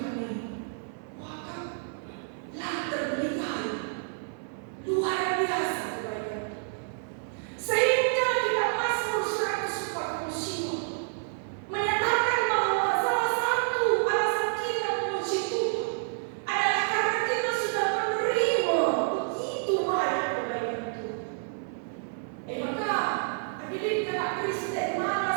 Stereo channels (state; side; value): silent; left; 59 dB below the other